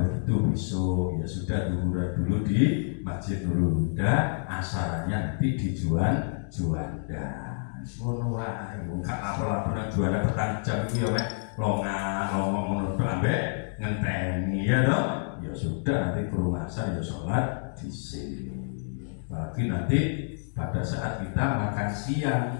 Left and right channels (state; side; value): silent; right; digital silence